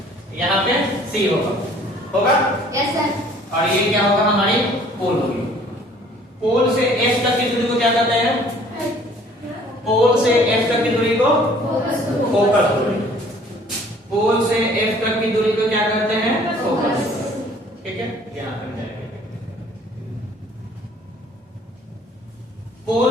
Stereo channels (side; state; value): both; normal; correlation 0.55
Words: यहाँ पे C होगा यस सर। और ये क्या होगा? हमारी पोल होगी। पोल से F तक की दूरी को क्या कहते हैं? पोल से F तक की दूरी को फोकस दूरी। पोल से F तक की दूरी को क्या कहते हैं? फोकस। ठीक है, यहाँ तक जाएंगे।